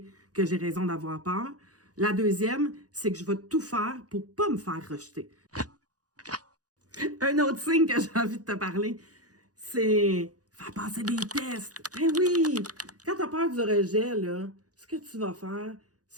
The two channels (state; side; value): late; left; 0.67 ms